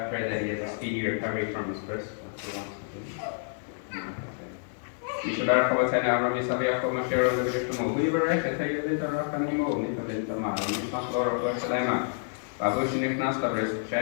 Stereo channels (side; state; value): right; silent; digital silence